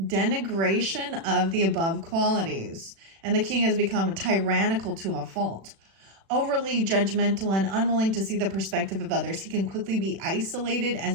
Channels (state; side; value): late; left; 36 ms